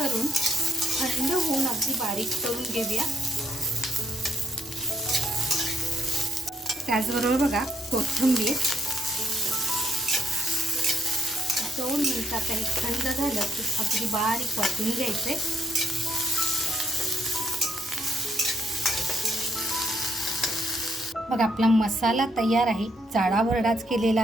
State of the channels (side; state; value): both; normal; correlation 0.74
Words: थंड होऊन अगदी बारीक करून घेऊया. त्याचबरोबर बघा कोथिंबीर 2 मिनिटात हे थंड झालं की अगदी बारीक वाटून घ्यायचे. बघा आपला मसाला तयार आहे, जाडा भरडाच केलेला